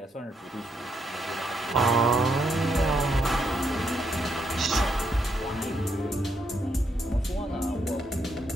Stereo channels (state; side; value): normal; both; correlation 0.77